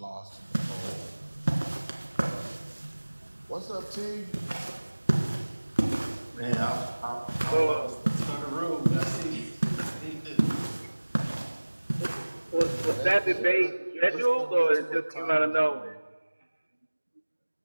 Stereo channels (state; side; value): inverted; both; correlation -1.00